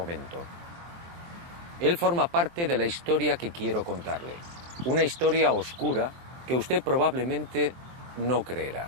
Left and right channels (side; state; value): left; late; 23 ms